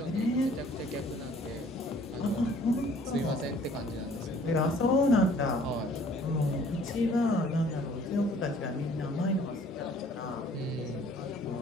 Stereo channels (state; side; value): normal; both; correlation 0.56